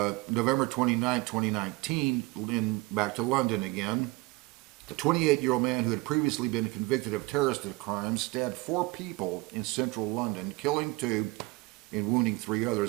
29, 2019, back to London again. The 28-year-old man who had previously been convicted of terrorist crimes stabbed 4 people in central London, killing 2 and wounding 3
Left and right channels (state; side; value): quieter; left; 23.1 dB